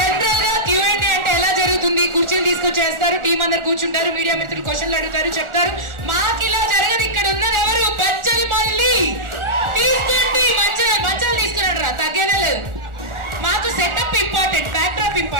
గా Q&A అంటే ఎలా జరుగుతుంది, కుర్చీలు తీసుకొచ్చేస్తారు, టీం అందరు కూర్చుంటారు, మీడియా మిత్రులు క్వశ్చన్లు అడుగుతారు, చెప్తారు. మాకు ఇలా జరగదు. ఇక్కడ ఉన్నది ఎవరు, బచ్చలి మళ్ళీ తీసుకోండి, మంచాలు తీసుకున్నాడు రా, తగ్గేనే లేదు. మాకు setup important, back drop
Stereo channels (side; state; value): left; late; 1.4 ms